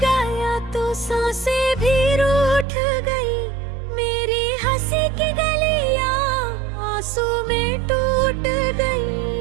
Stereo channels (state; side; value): drops out; left; at 2.7 s